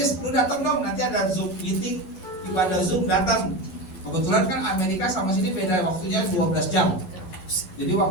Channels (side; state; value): right; late; 11 ms